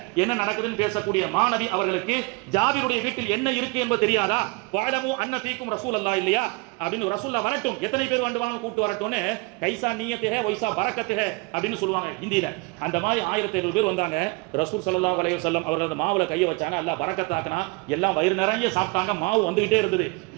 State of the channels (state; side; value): quieter; left; 27.8 dB